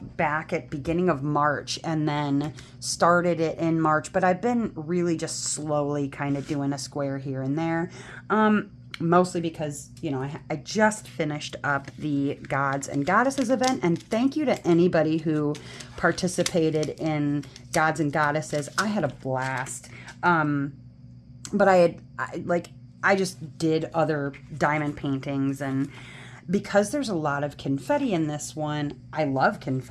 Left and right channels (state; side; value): identical; both; correlation 1.00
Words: back at beginning of March and then started it in March, but I've been really just slowly kind of doing a square here and there, mostly because, you know, I just finished up the Gods and Goddesses event, and thank you to anybody who participated in Gods and Goddesses. I had a blast, but I just did other diamond paintings, and because there's a lot of confetti in this one, I love